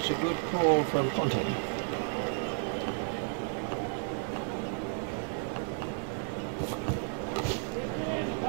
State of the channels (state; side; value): silent; left; 56 dB below the other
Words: a good call from Ponting.